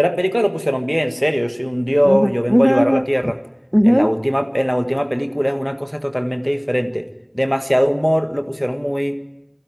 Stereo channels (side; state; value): both; identical; correlation 1.00